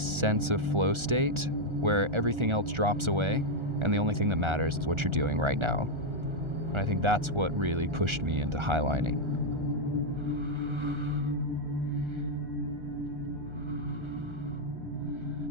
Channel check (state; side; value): late; left; 1.4 ms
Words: of flow state where everything else drops away, and the only thing that matters is what you're doing right now. And I think that's what really pushed me into highlining.